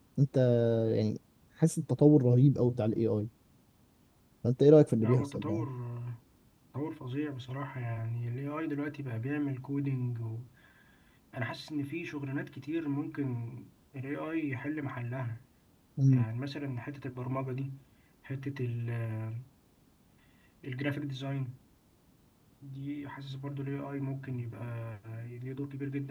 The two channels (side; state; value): both; identical; correlation 1.00